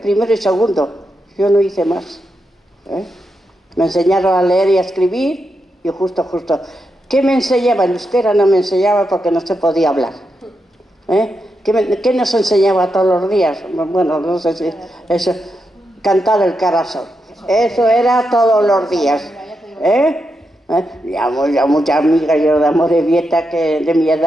primero y segundo, yo no hice más. Me enseñaron a leer y a escribir y justo. ¿Qué me enseñaba? En euskera no me enseñaba porque no se podía hablar. ¿Qué nos enseñaba todos los días? Bueno, no sé si eso, cantar el carasol. Eso era todos los días. Ya muchas amigas yo de Amorebieta que de mi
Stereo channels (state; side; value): normal; both; correlation 0.85